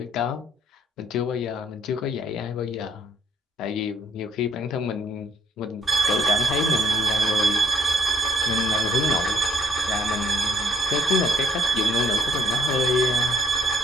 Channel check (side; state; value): both; normal; correlation 0.65